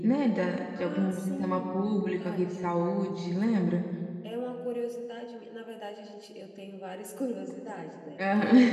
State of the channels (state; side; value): identical; both; correlation 1.00